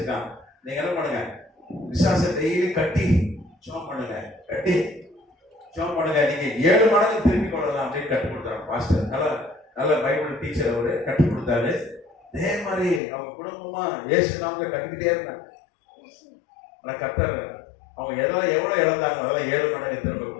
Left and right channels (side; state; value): right; drops out; at 13.0 s